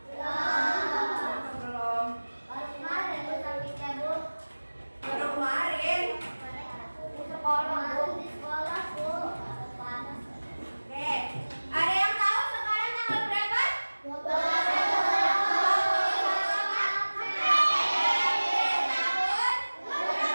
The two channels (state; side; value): inverted; both; correlation -1.00